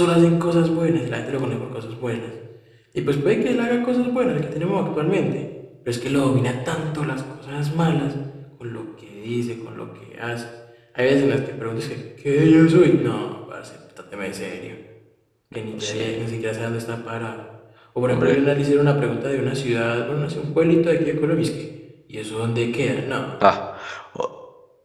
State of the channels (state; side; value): identical; both; correlation 1.00